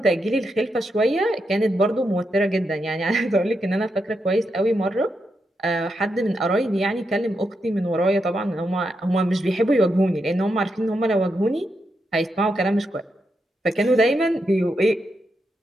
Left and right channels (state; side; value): normal; both; correlation 0.84